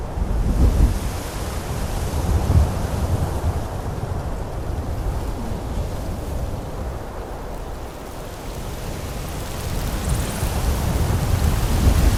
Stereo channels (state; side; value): identical; both; correlation 1.00